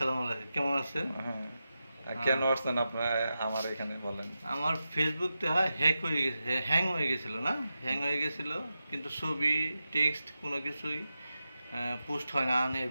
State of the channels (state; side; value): inverted; both; correlation -0.91